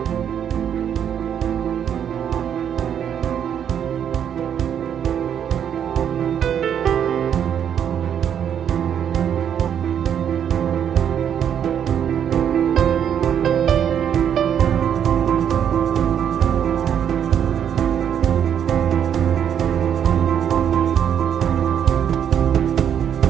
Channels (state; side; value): quieter; left; 8.9 dB